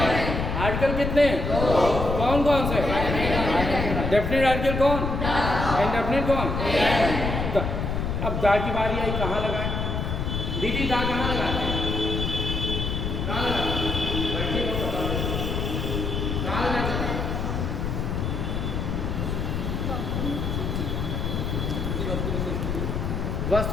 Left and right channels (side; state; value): left; noise; rumble, 2 dB below the sound